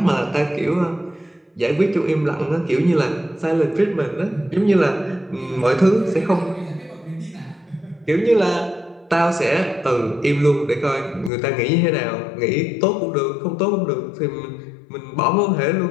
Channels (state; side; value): drops out; right; at 11.3 s